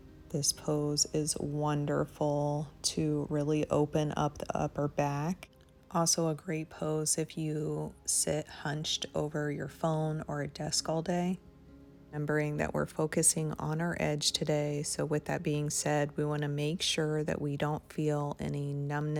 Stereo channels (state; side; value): identical; both; correlation 1.00